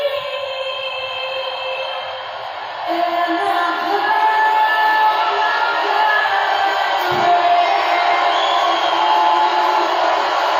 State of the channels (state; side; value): identical; both; correlation 1.00